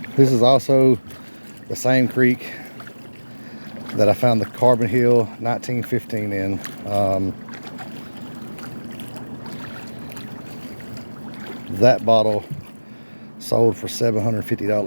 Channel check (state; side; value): inverted; both; correlation -1.00